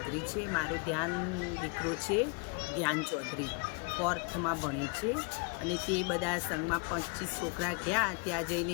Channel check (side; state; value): right; quieter; 32.7 dB